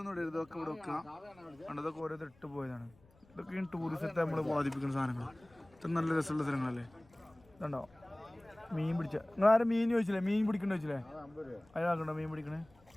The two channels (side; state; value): left; noise; rumble, 28 dB below the sound